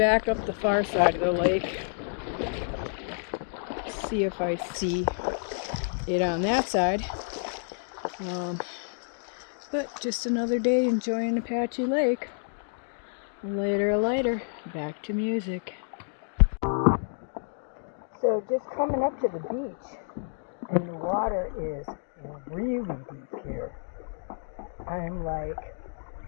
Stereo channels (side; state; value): right; silent; digital silence